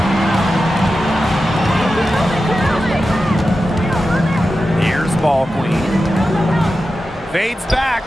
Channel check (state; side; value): normal; both; correlation 0.92